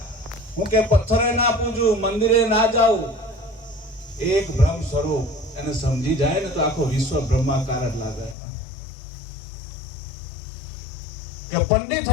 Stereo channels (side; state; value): right; drops out; at 8.3 s